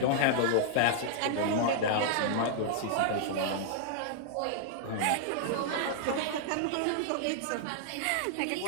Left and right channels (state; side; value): different; both; correlation -0.01